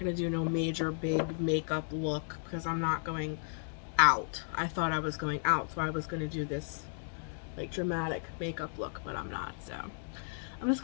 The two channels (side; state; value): right; silent; digital silence